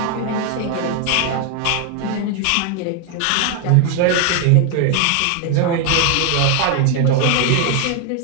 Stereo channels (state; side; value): different; both; correlation 0.01